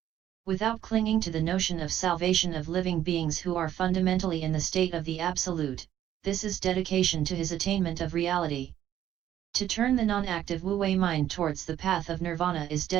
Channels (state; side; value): quieter; left; 11.5 dB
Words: Without clinging to the notion of salvation of living beings who are fundamentally in the state of the Absolute, this is dedication to his attainment of reality. To turn the non-active wu-wei mind towards the path of nirvana is